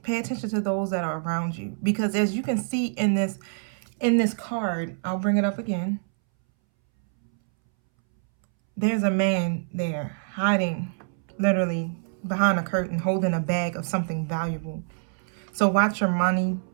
Pay attention to those that are around you. Because as you can see in this card, I'll bring it up again. There's a man there hiding literally behind a curtain, holding a bag of something valuable. So watch your money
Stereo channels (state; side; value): silent; left; 61 dB below the other